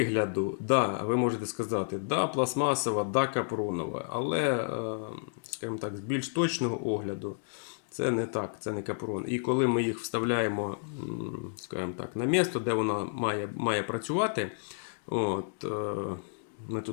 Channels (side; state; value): right; silent; digital silence